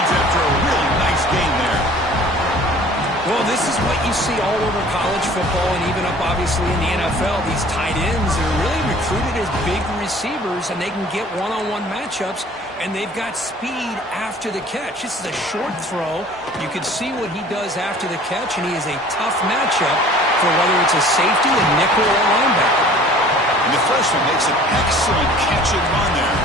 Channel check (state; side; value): normal; both; correlation 0.49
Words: after a really nice gain there. Well, this is what you see all over college football and even up, obviously, in the NFL. These tight ends are really recruited as big receivers, and they can get one-on-one matchups, and they've got speed after the catch. This is a short throw. You can see what he does after the catch, and he is a tough matchup for whether it's a safety, a nickel, or a linebacker. And the freshman makes an excellent catch and run there.